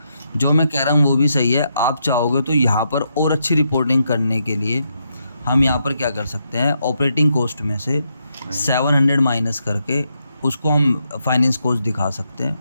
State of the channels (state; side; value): inverted; both; correlation -0.80